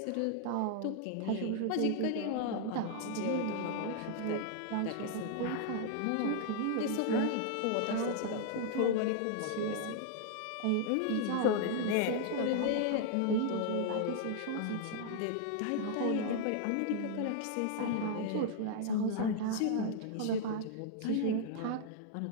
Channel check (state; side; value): different; both; correlation -0.01